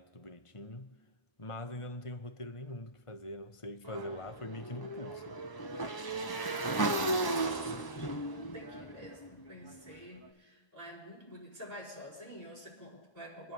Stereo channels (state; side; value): late; right; 1.0 ms